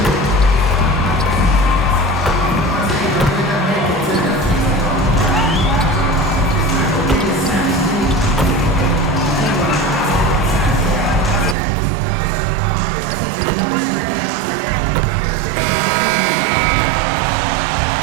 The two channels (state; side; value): drops out; left; at 11.6 s